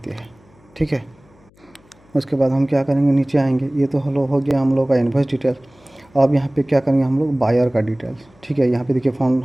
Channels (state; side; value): noise; left; hum, 30 dB below the sound